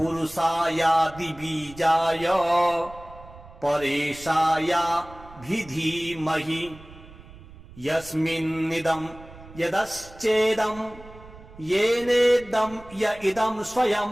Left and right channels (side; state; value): right; noise; rumble, 20 dB below the sound